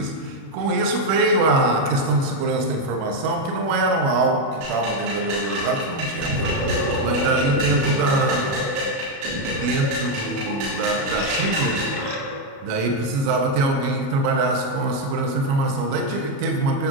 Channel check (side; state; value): left; late; 36 ms